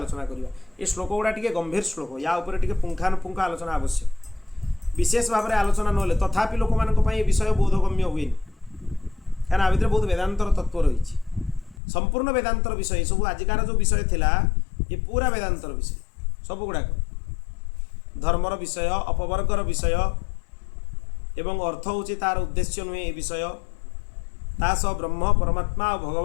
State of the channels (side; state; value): right; drops out; at 11.8 s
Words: करवा। ये श्लोक गुड़ा टे गंभीर श्लोक या उपर टे पुंखानुपुंख आलोचना आवश्यक। विशेष भाव में आलोचना ना तथापि लोक मान विषय बोधगम्य हुए क्या भितर बहुत वेदांतर तत्व रही। संपूर्ण वेदांतर विषय सब आजिकार जो विषय थिला ये पूरा वेदांतर विषय सब गुड़ाक धर्मर विषय अपवर्गर विषय एवं अर्थ हूँ तार उद्देश्य नुहे ये विषय तास ब्रह्म परमात्मा और